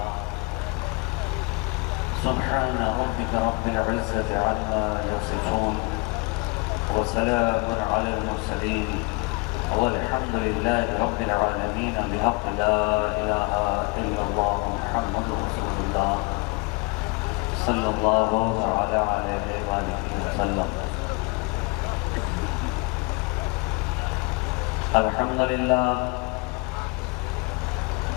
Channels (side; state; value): right; quieter; 28.8 dB